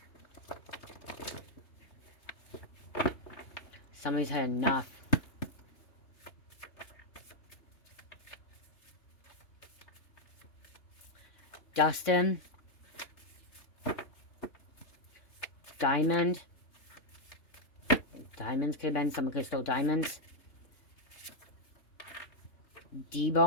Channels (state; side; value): late; right; 3.6 ms